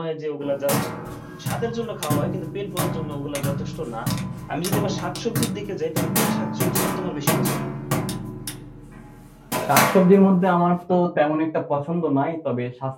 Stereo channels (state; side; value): identical; both; correlation 1.00